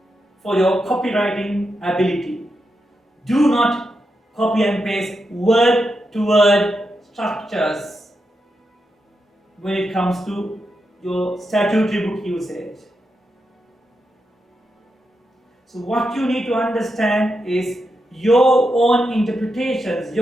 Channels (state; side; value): normal; both; correlation 0.86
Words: for your copywriting ability. Do not copy and paste word to word structures when it comes to your statutory book usage. So what you need to understand is your own interpretations,